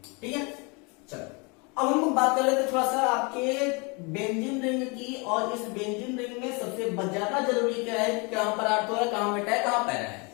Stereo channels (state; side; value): quieter; right; 30.5 dB